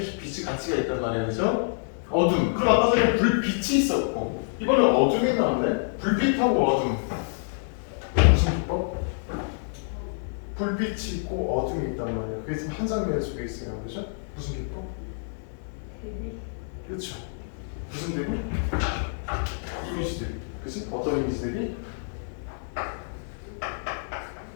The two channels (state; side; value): silent; right; digital silence